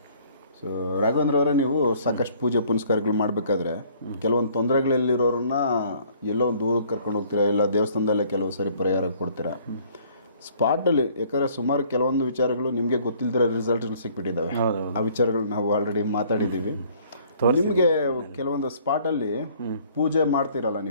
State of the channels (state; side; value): inverted; both; correlation -0.58